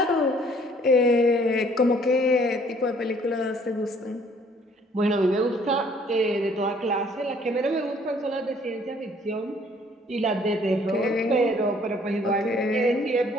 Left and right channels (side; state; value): both; normal; correlation 0.59